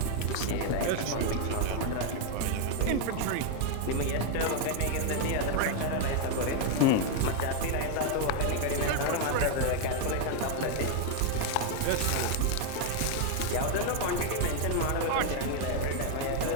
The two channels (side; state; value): both; different; correlation 0.00